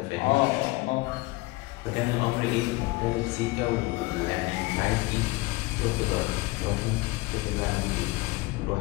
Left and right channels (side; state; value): right; quieter; 21.9 dB